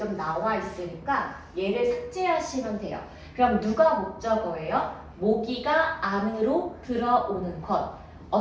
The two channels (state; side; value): identical; both; correlation 1.00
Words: 나와 있으니까 얘를 삭제하시면 돼요. 그럼 누가 목적어예요? 모기가 안으로 들어오는 것.